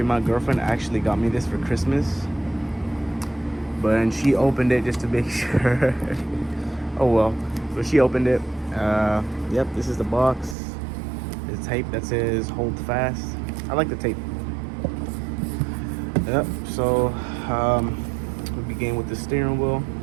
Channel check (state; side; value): drops out; left; at 10.6 s